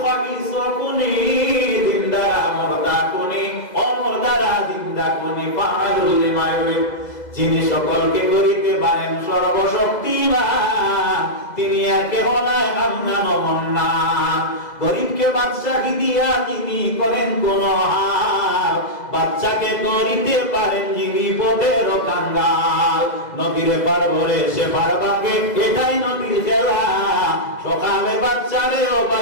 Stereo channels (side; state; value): right; late; 2.0 ms